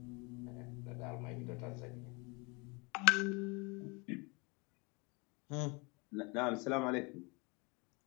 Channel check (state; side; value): quieter; right; 29.1 dB